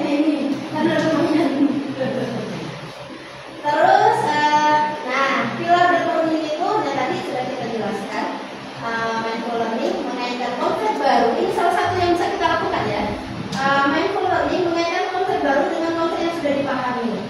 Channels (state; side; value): identical; both; correlation 1.00